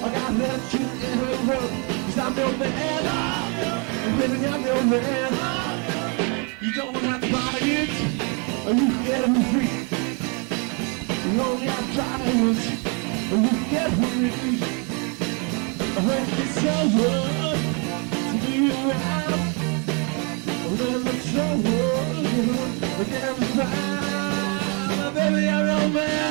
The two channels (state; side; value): quieter; left; 35.0 dB